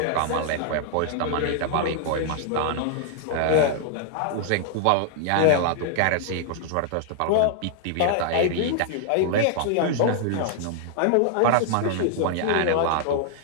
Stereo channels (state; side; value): different; both; correlation -0.01